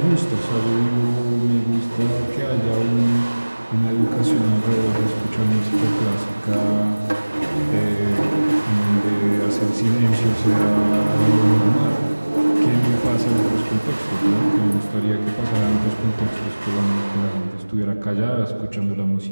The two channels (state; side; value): inverted; both; correlation -1.00